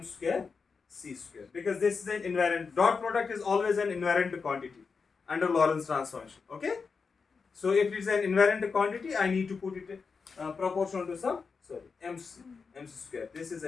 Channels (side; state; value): right; quieter; 5.1 dB